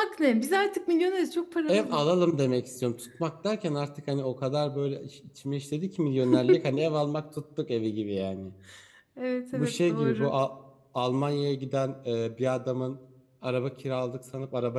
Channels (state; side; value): identical; both; correlation 1.00